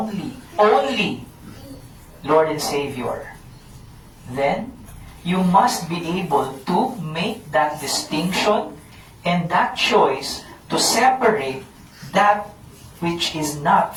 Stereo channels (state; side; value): identical; both; correlation 1.00